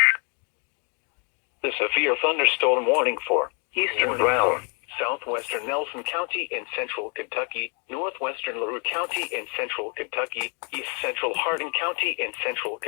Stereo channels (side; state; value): right; quieter; 37.7 dB